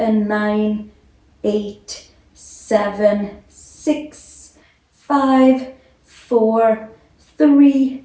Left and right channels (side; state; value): both; identical; correlation 1.00